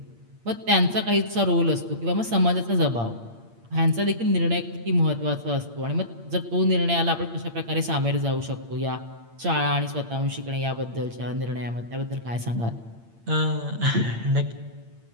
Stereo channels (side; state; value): left; late; 8.7 ms